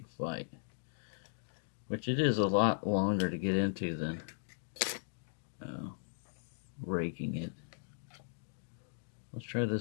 fight. which it is a lot longer to get into than raking it. Let's try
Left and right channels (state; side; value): silent; right; digital silence